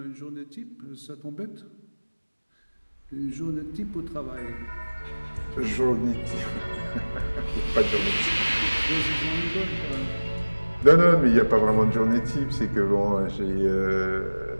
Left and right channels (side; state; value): both; inverted; correlation -1.00